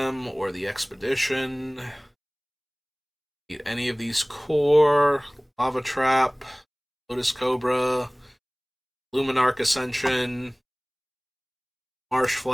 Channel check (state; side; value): identical; both; correlation 1.00